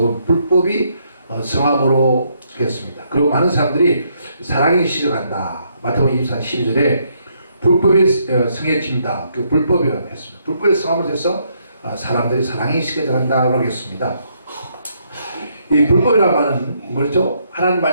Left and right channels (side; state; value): both; inverted; correlation -0.73